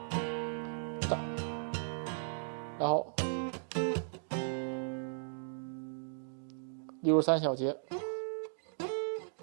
然后63小节，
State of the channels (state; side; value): silent; left; digital silence